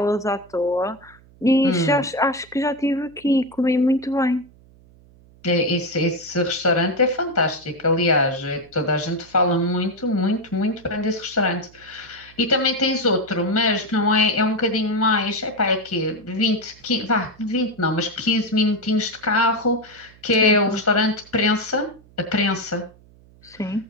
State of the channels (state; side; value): noise; right; hum, 26 dB below the sound